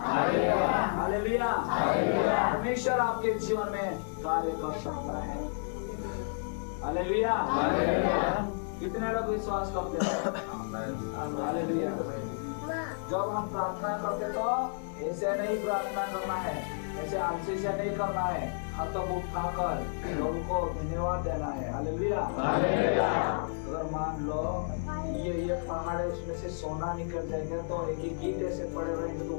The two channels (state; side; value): silent; right; 57 dB below the other